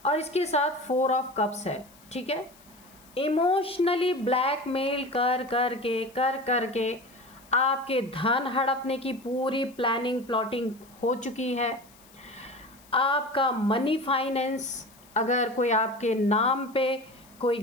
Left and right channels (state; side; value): noise; left; hiss, 26 dB below the sound